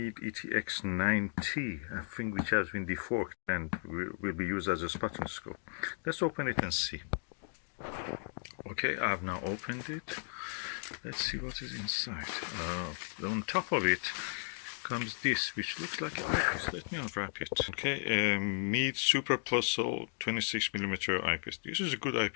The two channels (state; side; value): silent; right; 54 dB below the other